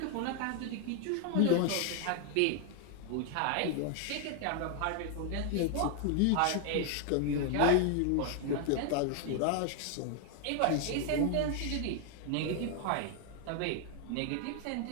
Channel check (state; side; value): different; both; correlation 0.00